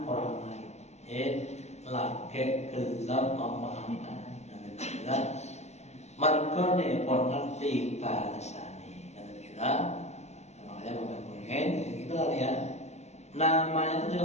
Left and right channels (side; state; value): right; late; 0.32 ms